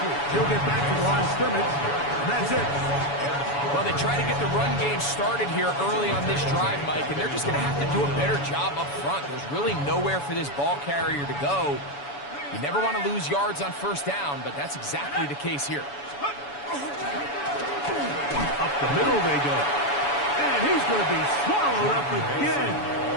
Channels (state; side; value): late; right; 7.0 ms